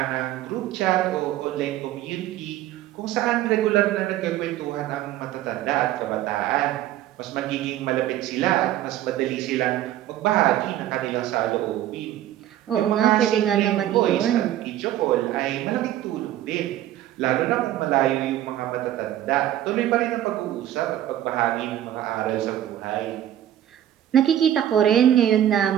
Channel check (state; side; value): quieter; left; 12.4 dB